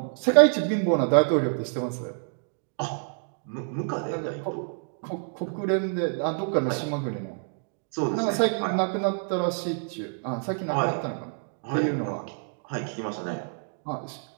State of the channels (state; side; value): silent; left; 60 dB below the other